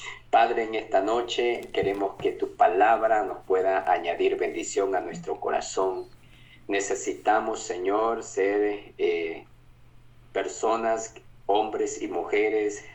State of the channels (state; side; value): identical; both; correlation 1.00